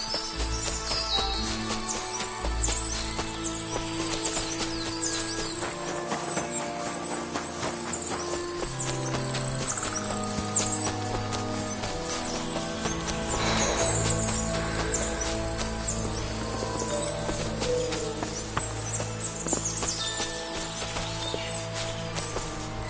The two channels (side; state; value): both; identical; correlation 1.00